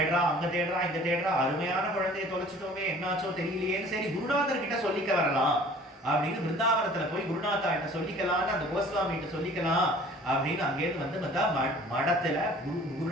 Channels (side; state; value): both; normal; correlation 0.50